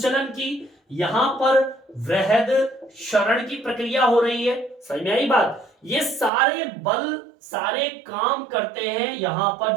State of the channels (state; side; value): drops out; left; at 6.3 s